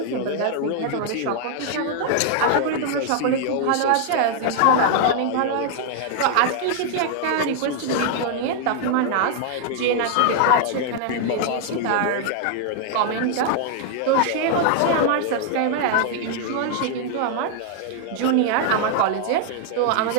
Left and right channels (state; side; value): different; both; correlation 0.00